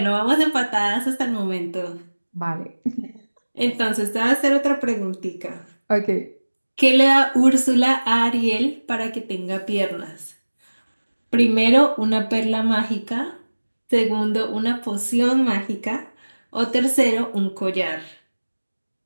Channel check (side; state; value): both; inverted; correlation -1.00